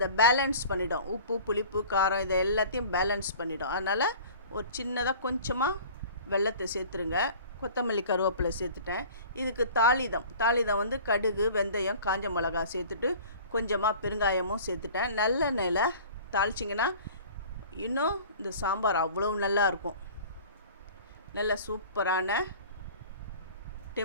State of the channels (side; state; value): both; inverted; correlation -0.44